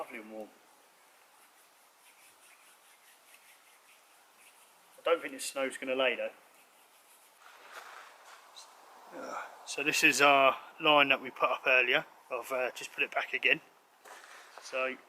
and warm. I don't think this snow's going to lay though. So this is our line that we put up earlier. I've just put it back again. So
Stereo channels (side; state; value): both; identical; correlation 1.00